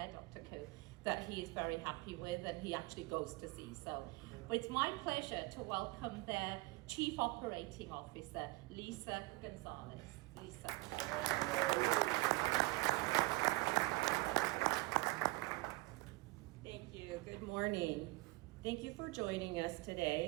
Dr. Koo, that he is very happy with and he actually goes to see. So it's my pleasure to welcome their Chief Operating Officer, Lisa Gonzalez. Lisa. Thank you. Good morning. Thank you for joining us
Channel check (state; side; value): quieter; left; 22.6 dB